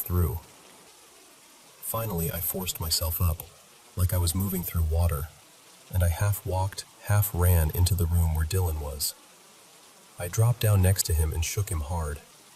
through. Finally, I forced myself up, like I was moving through water, and I half walked, half ran into the room where Dylan was. I dropped down next to him and shook him hard.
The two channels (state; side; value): identical; both; correlation 1.00